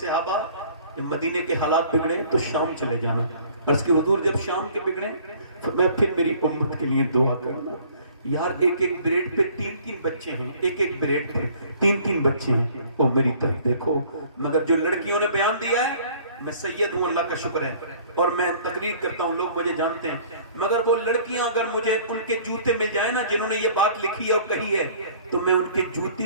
जब मदीने के हालात बिगड़े तो शाम चले जाना। अर्ज़ की हुजूर जब शाम के बिगड़े तो मैं फिर मेरी उम्मत के लिए दुआ करना। यार एक एक ब्रेड पे 3-3 बच्चे हैं, एक एक ब्रेड पे 3-3 बच्चे हैं। वो मेरी तरफ देखो। मगर जो लड़कियों ने बयान दिया है, मैं सैयद हूं, अल्लाह का शुक्र है, और मैं तकरीर करता हूं, लोग मुझे जानते हैं। मगर वो लड़कियां अगर मुझे उनके जूते मिल जाए ना जिन्होंने ये बात लिखी है और कही है, तो मैं उनके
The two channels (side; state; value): both; inverted; correlation -0.54